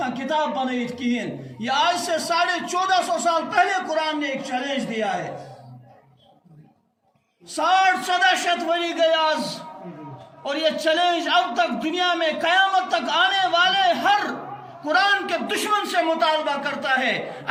کتاب بنائیت کہین. یہ آج سے 1450 سال پہلے قرآن نے ایک چیلنج دیا ہے. 60-70 وری گئے آج اور یہ چیلنج اب تک دنیا میں قیامت تک آنے والے ہر قرآن کے دشمن سے مطالبہ کرتا ہے.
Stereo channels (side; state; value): both; identical; correlation 1.00